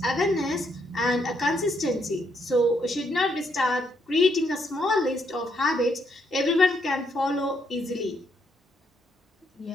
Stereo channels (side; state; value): both; normal; correlation 0.75